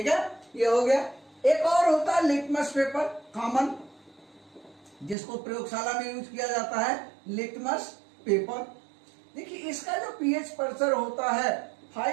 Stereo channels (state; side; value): drops out; left; at 5.2 s